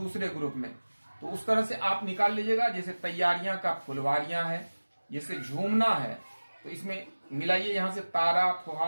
ग्रुप में, तो उस तरह से आप निकाल लीजिएगा। जैसे तैयारियां का फुलवारियां है, जैसे झूमना है तो इसमें मिलाइए यहां से तारा,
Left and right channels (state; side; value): inverted; both; correlation -1.00